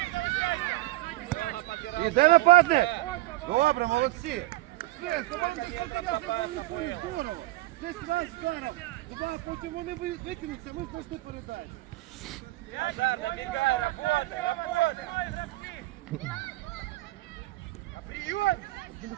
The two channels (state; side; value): quieter; left; 18.3 dB